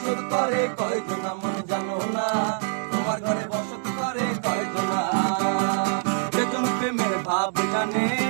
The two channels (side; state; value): left; silent; digital silence